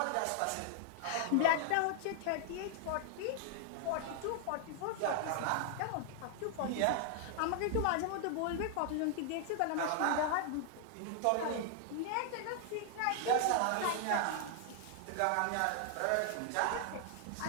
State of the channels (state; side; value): different; both; correlation 0.00